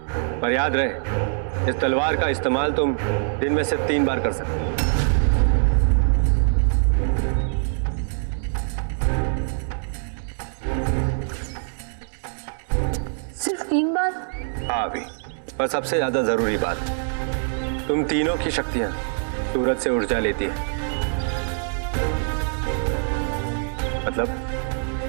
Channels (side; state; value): left; silent; 63 dB below the other